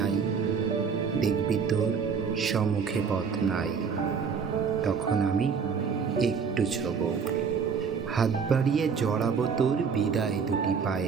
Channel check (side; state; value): left; quieter; 6.0 dB